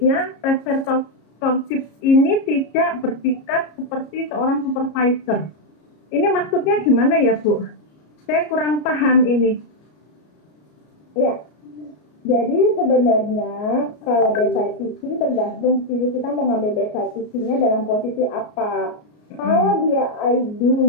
prescriptorship ini tidak bertingkat seperti seorang supervisor. Ini maksudnya gimana ya bu? Saya kurang paham ini. Ya, jadi sebenarnya kalau bedside teaching tergantung sih kita mau ngambil bedside teachingnya dalam posisi apa. Kalau dia I do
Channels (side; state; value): right; late; 33 ms